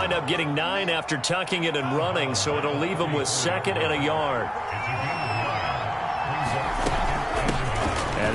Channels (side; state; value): both; identical; correlation 1.00